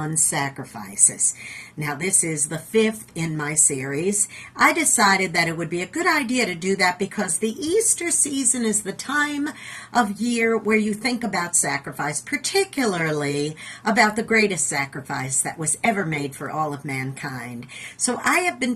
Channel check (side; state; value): both; identical; correlation 1.00